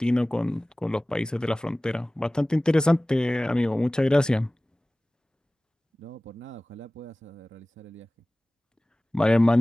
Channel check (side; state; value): both; normal; correlation 0.98